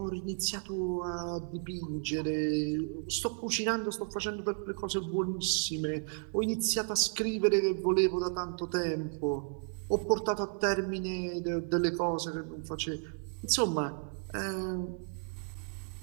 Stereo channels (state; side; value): silent; left; 56 dB below the other